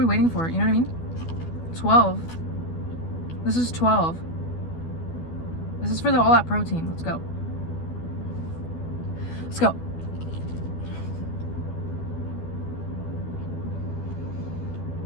waiting for? You know what I mean? 12. This is 12. This is for all that protein. Let's go. Let's go.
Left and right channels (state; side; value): late; right; 12 ms